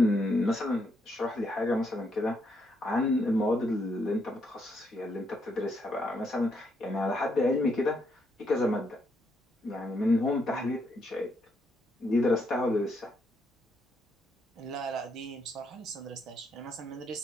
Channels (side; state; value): both; normal; correlation 0.77